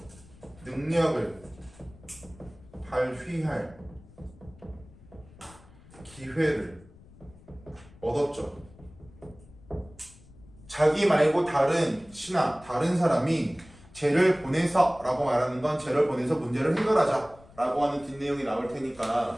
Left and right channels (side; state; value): left; noise; rumble, 23 dB below the sound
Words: 능력을 발휘할 기회를 얻었죠. 자기 말고 다른 신하, 다른 사람이 쟤를 보내서 라고 말하는 건 쟤를 보내서 문제를 해결하자 라고 하는 뒷내용이 나올